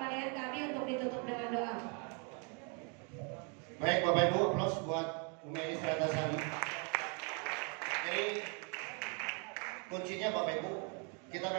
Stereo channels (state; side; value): quieter; left; 37.4 dB